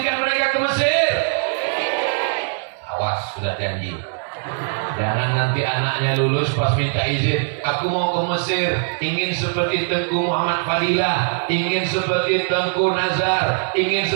mereka ke Mesir. Awas, sudah janji. Jangan nanti anaknya lulus pas minta izin, aku mau ke Mesir, ingin seperti Tengku Muhammad Fadilah, ingin seperti Tengku Nazar, ingin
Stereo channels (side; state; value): left; silent; digital silence